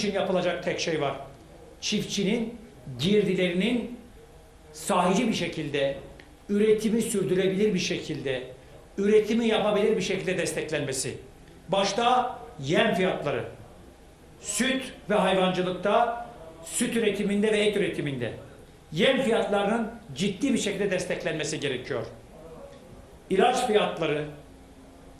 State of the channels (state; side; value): identical; both; correlation 1.00